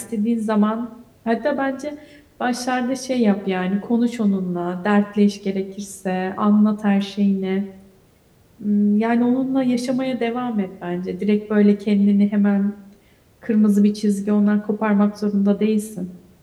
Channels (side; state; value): both; identical; correlation 1.00